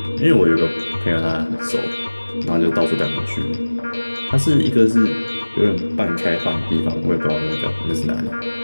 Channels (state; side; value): inverted; both; correlation -1.00